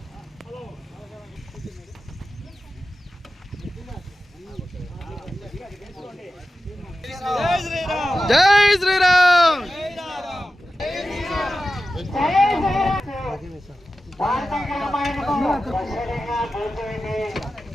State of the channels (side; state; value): both; normal; correlation 0.93